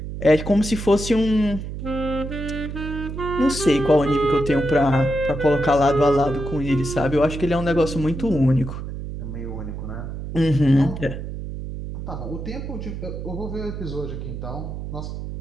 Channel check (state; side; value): noise; right; hum, 7 dB below the sound